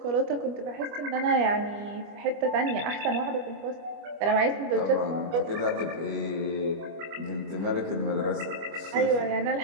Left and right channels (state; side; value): late; left; 25 ms